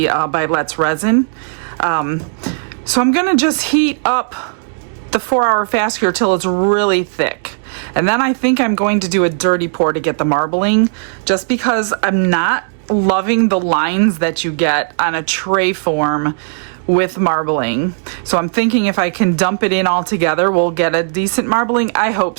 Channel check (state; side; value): silent; left; digital silence